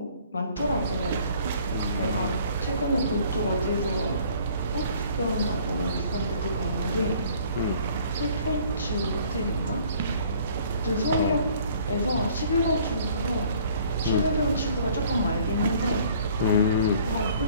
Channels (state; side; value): inverted; both; correlation -0.55